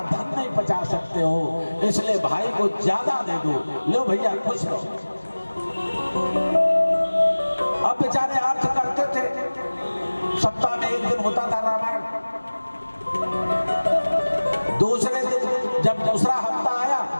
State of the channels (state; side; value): inverted; both; correlation -1.00